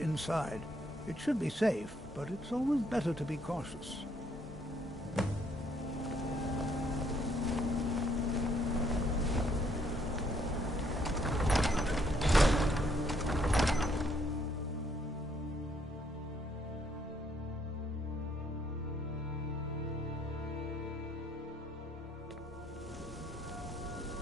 It should be safe, but it's always better to be cautious.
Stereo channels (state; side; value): normal; both; correlation 0.68